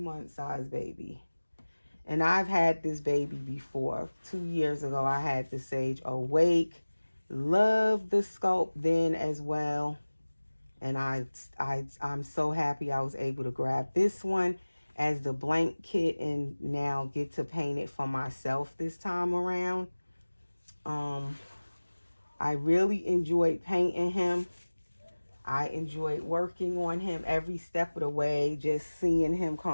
size baby. And I've had this baby before. 2 years ago, I had the Sage Awake. Loved the sculpt then as well. And I'm so happy I was able to grab this one as the blank kit and now get to paint it for myself this time around. I really enjoyed painting him. I enjoyed working on him every step of the way, just seeing him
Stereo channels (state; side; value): inverted; both; correlation -1.00